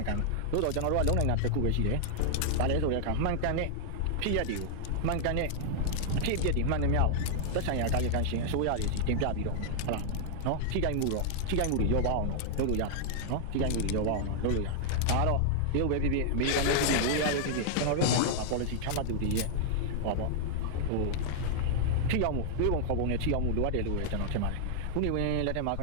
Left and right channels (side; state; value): both; different; correlation -0.01